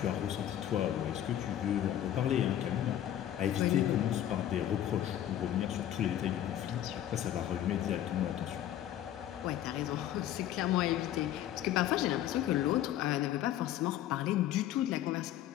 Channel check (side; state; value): right; quieter; 11.8 dB